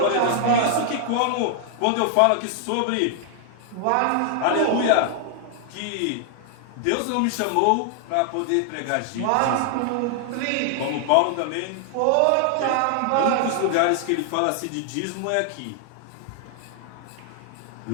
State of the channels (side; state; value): both; different; correlation 0.00